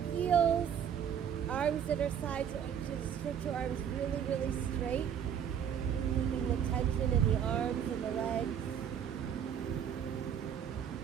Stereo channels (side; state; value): left; quieter; 8.6 dB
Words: heels. Arms at our sides. So just stretch your arms really, really straight. Keeping the tension in the arms and the legs.